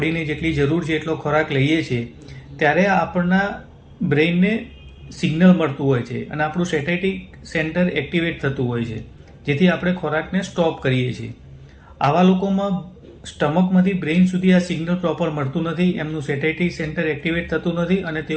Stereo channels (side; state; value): both; identical; correlation 1.00